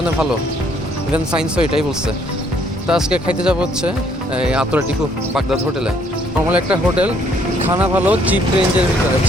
ভালো, ইভেন সায়েন্সও এটাই বলছে। তো আজকে খাইতে যাবো হচ্ছে এই আতরাটিকু বাগদাদ হোটেলে। নর্মাল একটা হোটেল, খানা ভালো, চিপ রেঞ্জের ভিতরে,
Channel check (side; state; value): both; normal; correlation 0.65